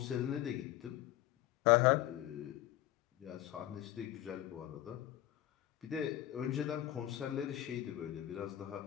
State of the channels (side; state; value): right; quieter; 13.8 dB